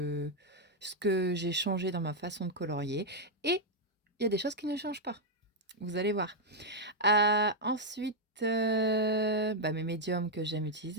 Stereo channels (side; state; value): both; normal; correlation -0.02